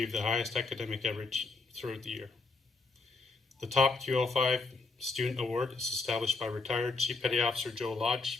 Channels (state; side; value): quieter; right; 3.9 dB